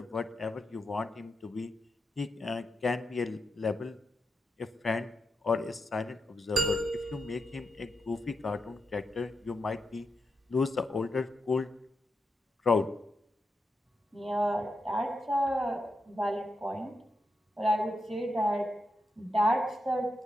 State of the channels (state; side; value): normal; both; correlation 0.85